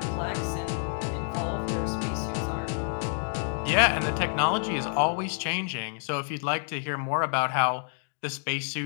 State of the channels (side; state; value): right; silent; digital silence